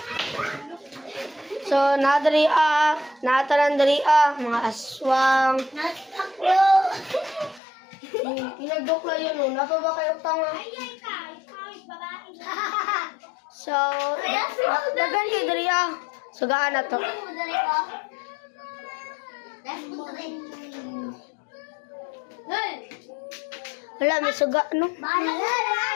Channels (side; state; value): right; drops out; at 7.6 s